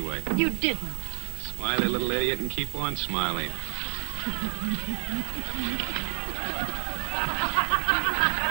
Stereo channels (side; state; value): left; silent; digital silence